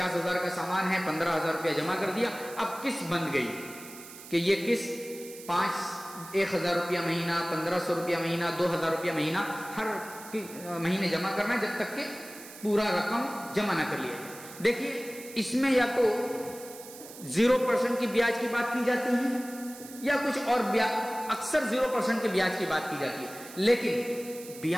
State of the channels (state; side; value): noise; right; hiss, 16 dB below the sound